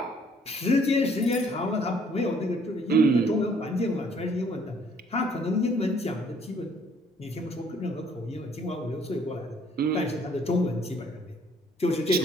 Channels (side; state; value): both; normal; correlation 0.62